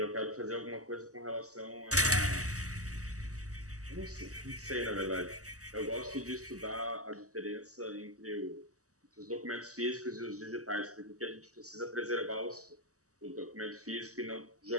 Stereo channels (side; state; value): left; late; 0.66 ms